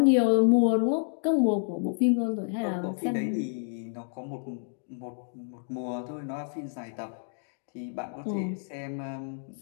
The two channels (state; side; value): silent; right; digital silence